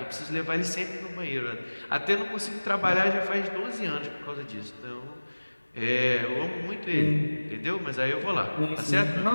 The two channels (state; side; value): inverted; both; correlation -1.00